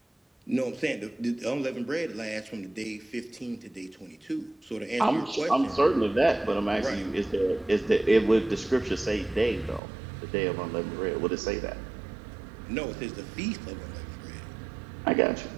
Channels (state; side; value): drops out; left; at 9.8 s